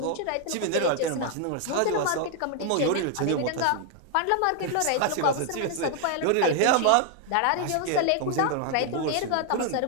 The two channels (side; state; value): both; different; correlation 0.00